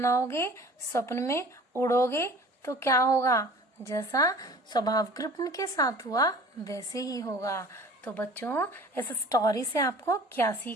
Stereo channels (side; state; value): both; normal; correlation 0.46